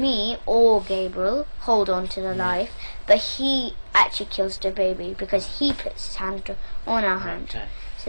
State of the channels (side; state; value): both; inverted; correlation -1.00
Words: or Gabriel hold on to the knife, but he actually kills the baby because he puts his hand on our hand. Okay.